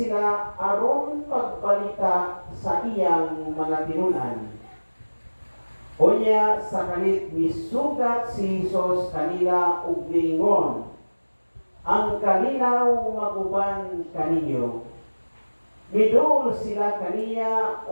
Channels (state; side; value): inverted; both; correlation -1.00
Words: aron pagbalita sa iyang mga tinunan. Unya sa kalit misugat si Hesus kanila ug niingon, ang kalinaw maguban kaninyo. Midul sila kaniya